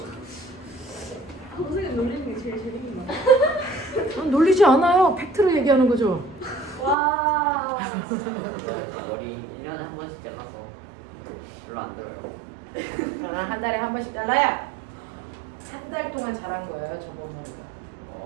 선생님 놀리는 게 제일 재밌는 거 같아요. 놀리지 않아요. 팩트로 얘기하는 거죠. 와. 머리 1년에 한 번씩 잘라서 별로 안 들어요. 한 달에 한 번씩 잘라야 한 달 동안 자란 거예요. 저번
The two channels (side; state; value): left; drops out; at 7.0 s